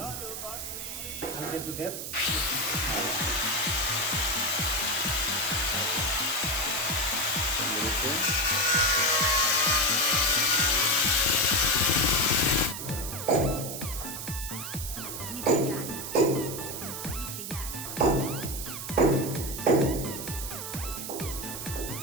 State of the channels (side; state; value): right; noise; hiss, 7 dB below the sound